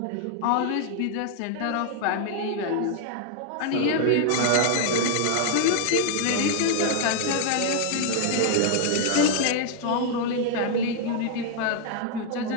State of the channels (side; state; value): both; different; correlation 0.00